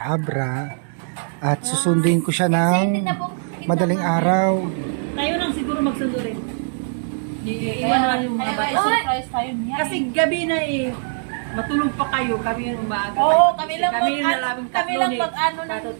Abra at susunduin ko siya ng madaling araw. Kayo lang siguro magsundo rin. Iiwan na lang yung mga Kaya bata. surprise tayo niya. Kasi gabi na matulog pa kayo. Kami yung umaga. Oo, kami lang kami lang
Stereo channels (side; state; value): left; silent; digital silence